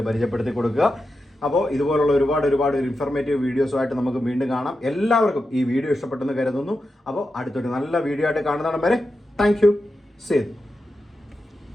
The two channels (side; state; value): both; normal; correlation 0.89